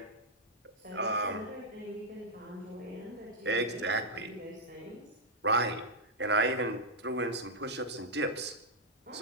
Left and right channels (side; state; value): both; normal; correlation -0.06